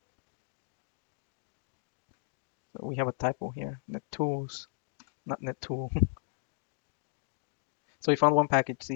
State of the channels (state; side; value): silent; right; digital silence